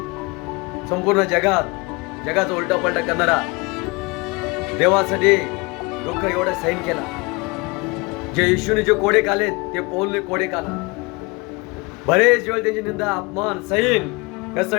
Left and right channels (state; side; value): quieter; right; 26.6 dB